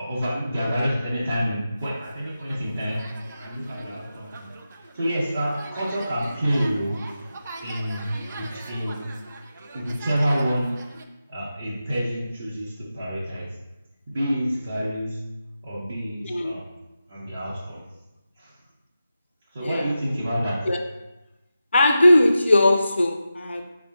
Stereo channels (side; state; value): both; inverted; correlation -0.91